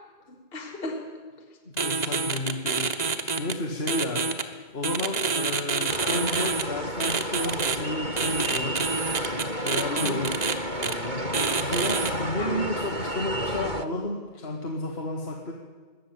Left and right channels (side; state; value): right; late; 2.0 ms